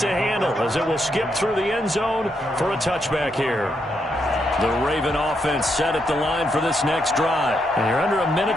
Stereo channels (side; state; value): both; normal; correlation 0.79